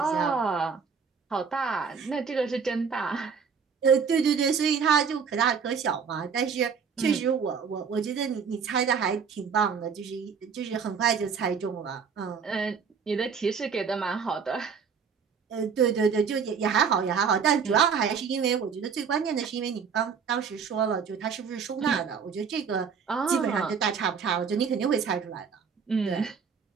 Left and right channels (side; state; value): left; quieter; 6.2 dB